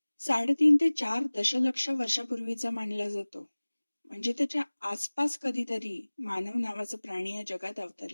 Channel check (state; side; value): inverted; both; correlation -1.00